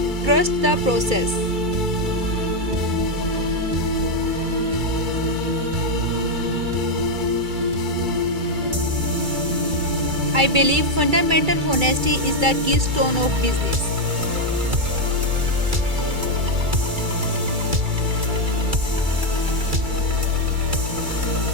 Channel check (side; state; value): left; late; 2.3 ms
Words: Trust the process. I believe fundamental honesty is the keystone of business.